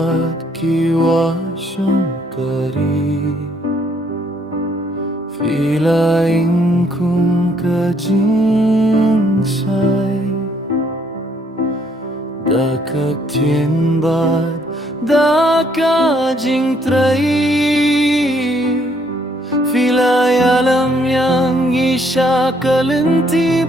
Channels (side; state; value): both; normal; correlation 0.68